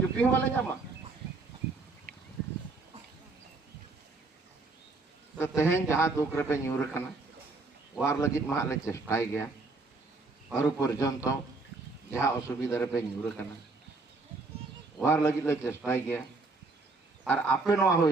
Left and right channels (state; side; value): quieter; left; 3.6 dB